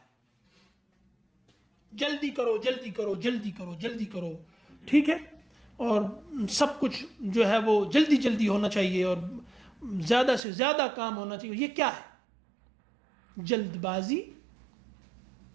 جلدی کرو جلدی کرو جلدی کرو جلدی کرو, ٹھیک ہے, اور سب کچھ جو ہے وہ جلدی جلدی ہونا چاہیے اور زیادہ سے زیادہ کام ہونا چاہیے. یہ کیا ہے؟ جلد بازی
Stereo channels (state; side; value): drops out; left; at 10.4 s